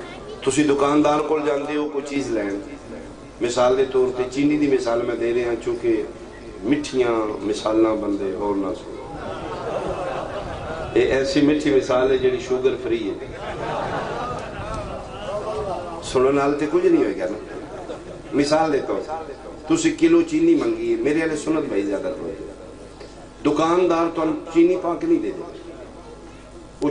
تسی دکاندار کو جاندے ہو کوئی چیز لین، مثال دے طور تے چینی دی مثال میں دے رہے ہیں چونکہ مٹھیاں مثالاں بندے اور نہ سو. یہ ایسی مٹھی مثال ہے جڑی شوگر فری ہے، سنن نال تے کچھ نہیں ہوئے گا نا. مثال دیتا ہوں، تسی کلو چینی منگی ہے، میرے والے سنت بھائی زیادہ تو دکاندار تو چینی پاک نہیں دے دے، وہ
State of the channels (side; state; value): both; identical; correlation 1.00